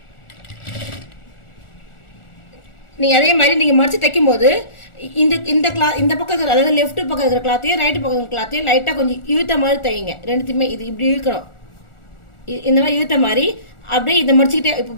நீங்கள் அதே மாதிரி நீங்கள் மடிச்சு தைக்கும் போது இந்த பக்கம் இருக்கிற, அதாவது லெஃப்ட் பக்கம் இருக்கிற கிளாத்தையும் ரைட்டு பக்கம் இருக்கிற கிளாத்தையும் லைட்டாக கொஞ்சம் இழுத்த மாதிரி தைங்க. ரெண்டுத்தையுமே இது இப்படி இழுக்கணும். இந்த மாதிரி இழுத்த மாதிரி அப்படியே இதை மடிச்சுக்கிட்டே இப்போ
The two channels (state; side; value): late; right; 1.4 ms